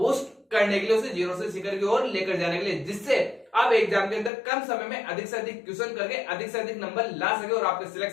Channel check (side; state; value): right; drops out; at 4.3 s